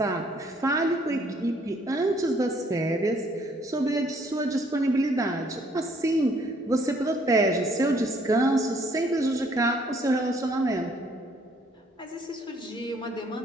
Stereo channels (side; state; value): both; normal; correlation 0.64